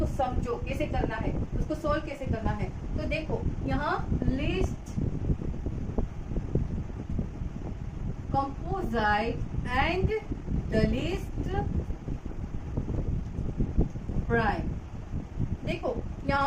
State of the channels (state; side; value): identical; both; correlation 1.00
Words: समझो कैसे करना है, उसको सोल्व कैसे करना है। तो देखो यहाँ list composite and the list prime, देखो